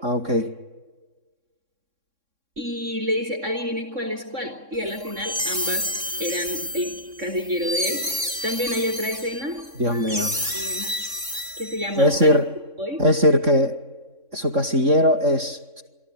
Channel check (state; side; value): late; left; 3.6 ms